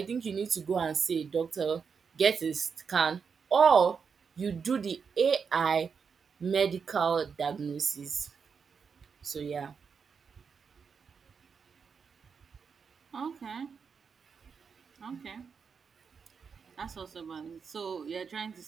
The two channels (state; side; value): quieter; left; 6.0 dB